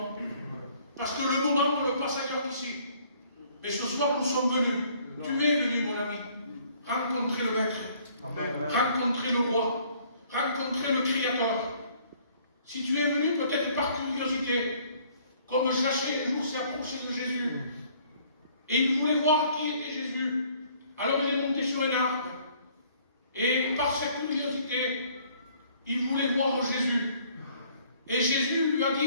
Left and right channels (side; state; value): both; inverted; correlation -0.59